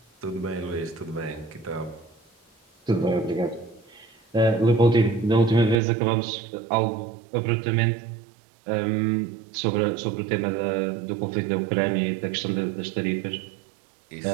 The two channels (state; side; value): drops out; left; at 5.8 s